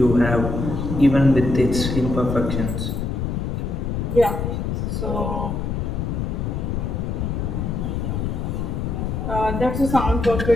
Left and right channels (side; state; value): left; noise; rumble, 2 dB below the sound